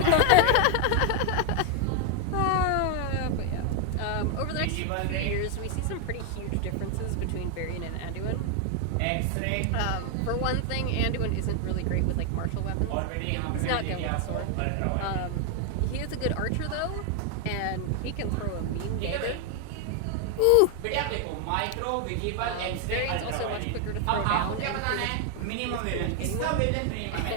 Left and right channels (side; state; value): both; different; correlation 0.01